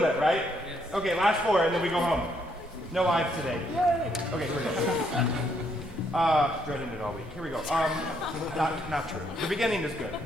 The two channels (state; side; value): normal; both; correlation 0.72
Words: right? Yes. Okay, last four, and then we go home. No eyes today. Yay! Okay, here we go. Dreading it all week. Here we go. Not true. The beginning is good.